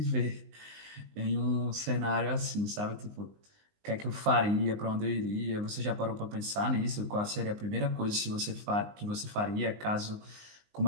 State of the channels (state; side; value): late; left; 19 ms